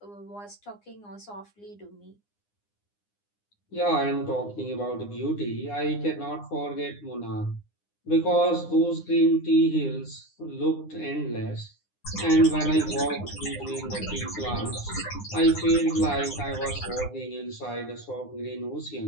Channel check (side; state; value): right; late; 9.8 ms